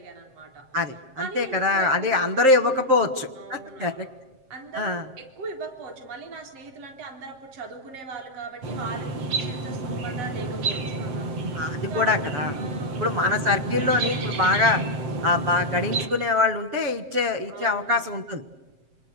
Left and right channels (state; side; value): late; left; 7.6 ms